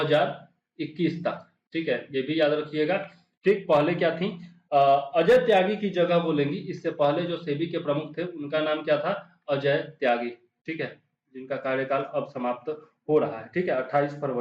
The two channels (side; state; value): both; identical; correlation 1.00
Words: तक, ठीक है, ये भी याद रखिएगा। ठीक, पहले क्या थी? अजय त्यागी की जगह वो लेंगी। इससे पहले जो सेबी के प्रमुख थे उनका नाम क्या था? अजय त्यागी, ठीक है, जिनका कार्यकाल अब समाप्त हो रहा है, ठीक है, 28